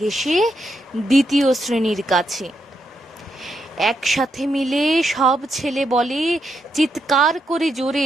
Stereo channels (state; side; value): normal; both; correlation 0.82